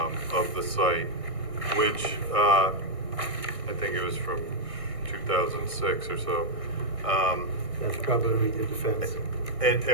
of the site, which I think it was from 2006 or so. That's probably when we did the fence. And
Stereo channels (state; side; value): late; left; 1.6 ms